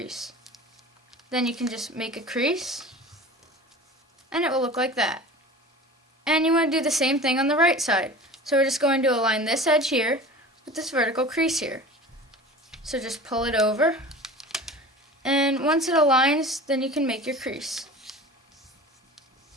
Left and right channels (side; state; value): both; normal; correlation 0.38